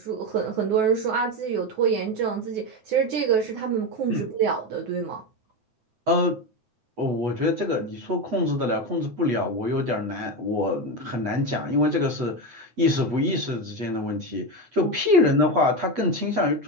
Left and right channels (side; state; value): left; late; 8.2 ms